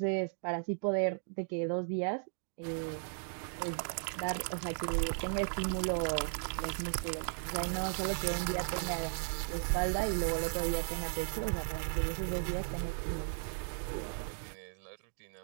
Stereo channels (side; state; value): left; silent; digital silence